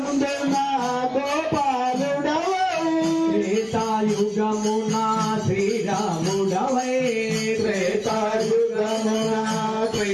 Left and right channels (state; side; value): identical; both; correlation 1.00